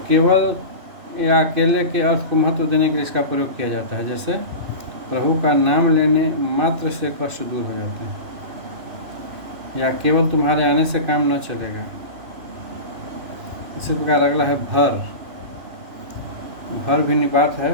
केवल या अकेले के अर्थ को महत्व देने के लिए इसका प्रयोग किया जाता है, जैसे प्रभु का नाम लेने मात्र से कष्ट दूर हो जाते हैं, या केवल तुम्हारे आने से काम न चलेगा। इसी प्रकार अगला है भर। भर भी निपात है।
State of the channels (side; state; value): left; late; 2.6 ms